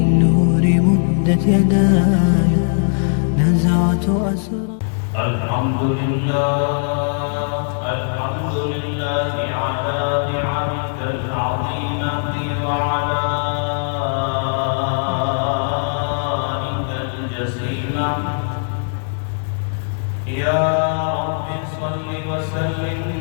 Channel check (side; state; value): right; silent; digital silence